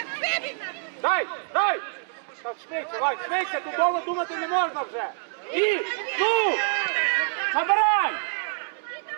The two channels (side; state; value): left; silent; digital silence